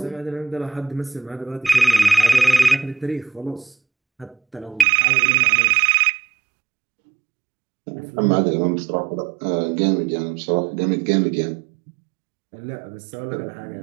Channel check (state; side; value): drops out; left; at 4.9 s